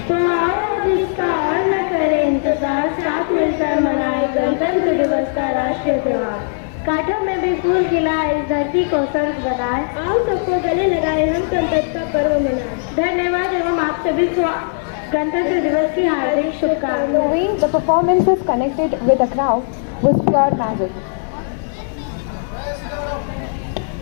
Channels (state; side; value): silent; right; 64 dB below the other